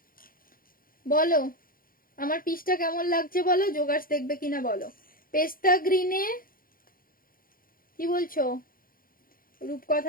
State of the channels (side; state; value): right; late; 0.42 ms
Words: বলো আমার পিসটা কেমন লাগছে বলো, জোগাড় দেখবে কিনা বলো। পেস্তা গ্রিনে কি বলছো